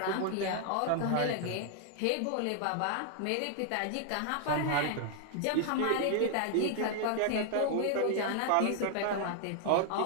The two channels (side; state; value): both; different; correlation 0.00